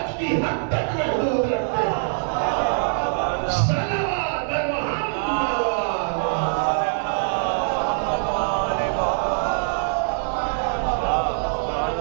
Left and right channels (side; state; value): left; silent; digital silence